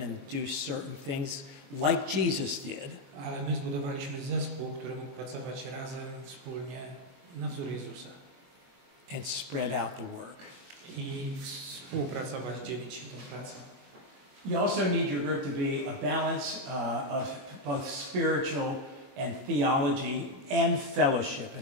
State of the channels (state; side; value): late; left; 22 ms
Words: and do certain things like Jesus did. Ale my zbudowaliśmy zespół, który mógł pracować razem, wspólnie, na wzór Jezusa. And spread out the work. I współpracować, dzielić się tą pracą. You also need your group to be a balance of both spiritual and theology and fellowship